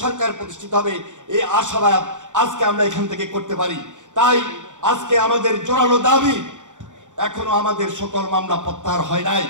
সরকার প্রতিষ্ঠিত হবে। এই আশাবাদ আজকে আমরা এখান থেকে করতে পারি। তাই আজকে আমাদের জোরালো দাবি, এখনো আমাদের সকল মামলা প্রত্যাহার হয় নাই।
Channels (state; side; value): late; left; 0.86 ms